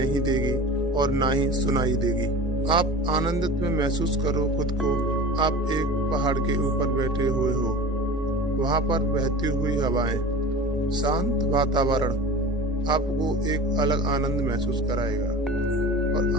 देगी और ना ही सुनाई देगी। आप आनंदित में महसूस करो खुद को। आप एक पहाड़ के ऊपर बैठे हुए हो, वहां पर बहती हुई हवाएं, शांत वातावरण आपको एक अलग आनंद महसूस कराएगा। और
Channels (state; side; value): normal; both; correlation 0.36